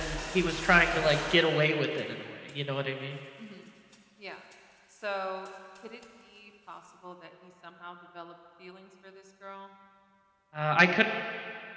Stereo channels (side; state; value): both; identical; correlation 1.00